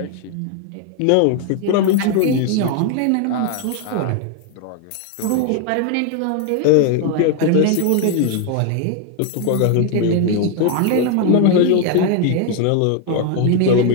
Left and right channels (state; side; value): different; both; correlation 0.01